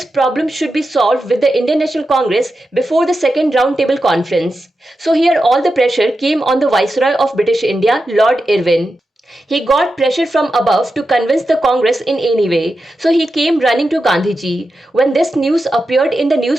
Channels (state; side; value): normal; both; correlation 0.90